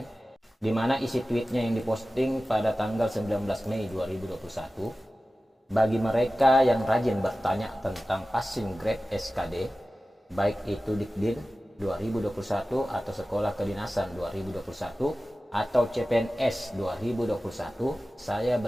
di mana isi tweetnya yang diposting pada tanggal 19 Mei 2021. Bagi mereka yang rajin bertanya tentang passing grade SKD, baik itu Dikdin 2021 atau Sekolah Kedinasan 2021 atau CPNS 2021, saya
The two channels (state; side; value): normal; both; correlation 0.95